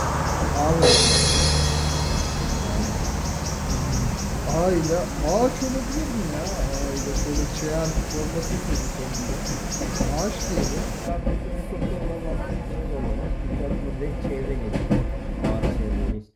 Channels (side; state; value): both; identical; correlation 1.00